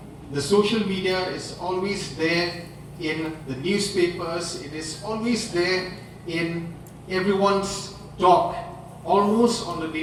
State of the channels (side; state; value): both; identical; correlation 1.00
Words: the social media, is always there in the newspapers, it is always there in everyone's talk almost on a